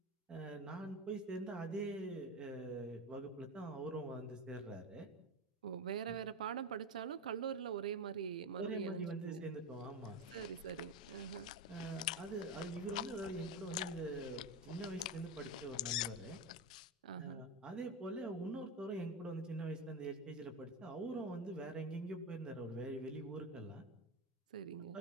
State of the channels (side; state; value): both; normal; correlation 0.18